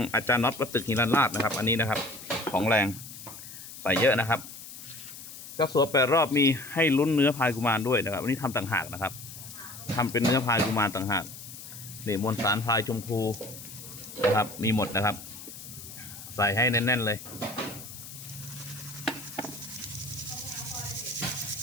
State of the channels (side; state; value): left; noise; hiss, 13 dB below the sound